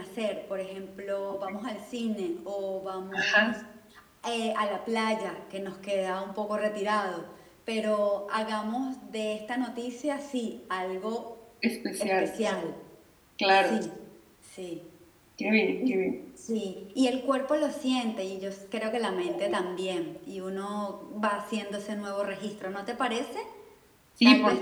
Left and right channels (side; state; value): both; identical; correlation 1.00